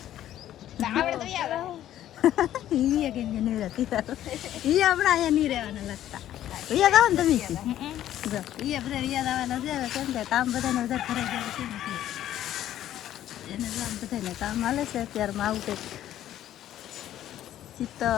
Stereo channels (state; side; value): quieter; right; 12.2 dB